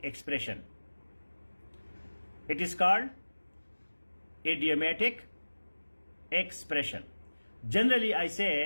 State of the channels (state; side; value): inverted; both; correlation -1.00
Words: expression. It is called idiomatic expression. Generally, I